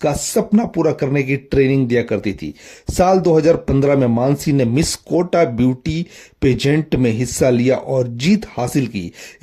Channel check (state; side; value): identical; both; correlation 1.00